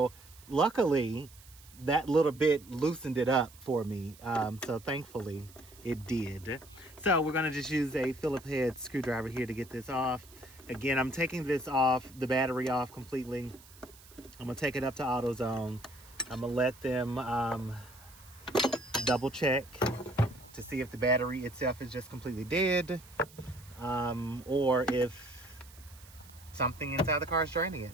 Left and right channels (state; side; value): noise; right; hiss, 22 dB below the sound